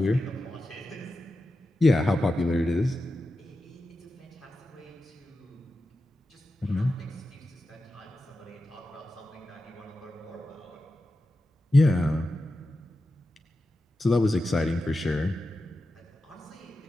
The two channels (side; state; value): both; normal; correlation 0.91